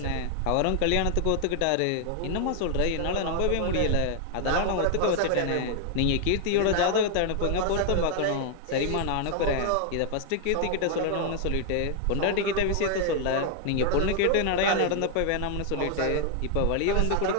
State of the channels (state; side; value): different; both; correlation 0.00